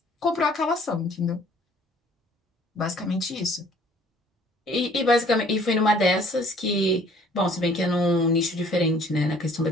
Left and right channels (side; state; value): both; normal; correlation 0.57